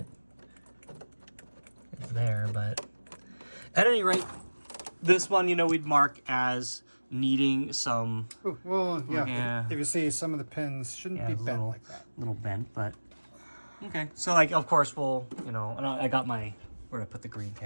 there, but at any rate, this one, you know, we'd mark as needing some. Ooh, well, yeah. If you see, some of the pins shouldn't be bent like that. Little bent, but okay. So, like, of course, we'll, you know, and I got my, where to put the green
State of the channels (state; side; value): inverted; both; correlation -1.00